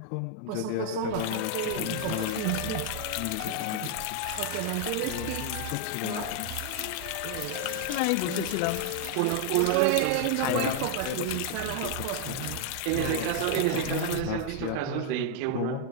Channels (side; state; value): both; different; correlation 0.00